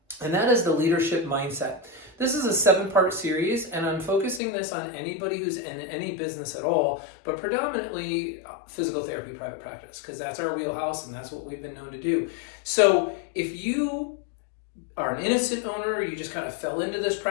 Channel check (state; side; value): drops out; right; at 4.4 s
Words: and that is the leadership mindset. This is a 7-part series, and I'm focusing this on anybody who's in any business at all, but predominantly physical therapy private practice, because that's our wheelhouse and that's what we've been known to do. So if you are an innocent owner, you just kind of fell into this